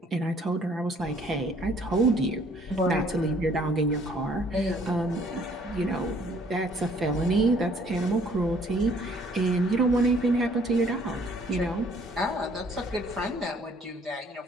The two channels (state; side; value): normal; both; correlation 0.60